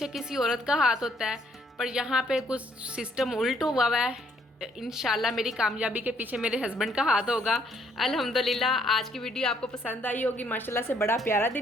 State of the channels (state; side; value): normal; both; correlation 0.67